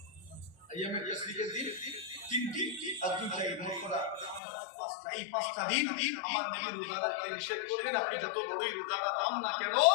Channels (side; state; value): right; drops out; at 4.4 s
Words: আইয়াম আত-তাশরীকের দিন তিনটি আর দুইটা ঈদ মোট করা পাঁচটা এই পাঁচটা দিন আমার নবী রোজা রাখতে নিষেধ করবেন আপনি যত বড়ই রোজা রাখান না কেন